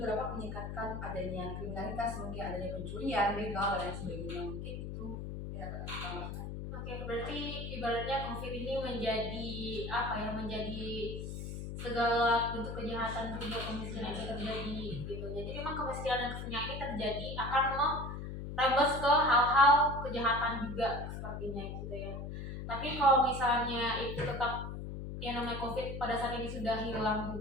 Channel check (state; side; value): noise; left; hum, 6 dB below the sound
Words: dapat meningkatkan adanya kriminalitas, mungkin adanya pencurian, begal, dan lain sebagainya. Mungkin itu ya tambahkan. Oke, berarti ibaratnya COVID ini menjadi segala bentuk kejahatan juga kemiskinan itu terjadi gitu. Jadi memang kemiskinan dan kesenjangan ini terjadi akan merembes ke hal-hal kejahatan juga sepertinya gitu ya. Tapi kalau misalnya itu tetap yang namanya COVID pada saat ini sudah hilang